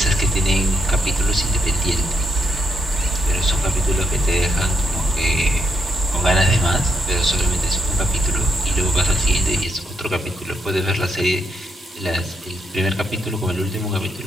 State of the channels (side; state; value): both; normal; correlation 0.79